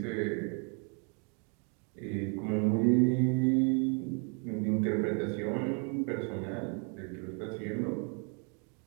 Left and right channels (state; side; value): quieter; left; 38.0 dB